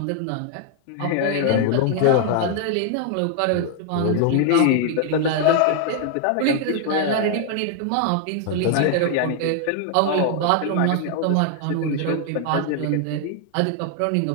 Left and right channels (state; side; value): different; both; correlation 0.00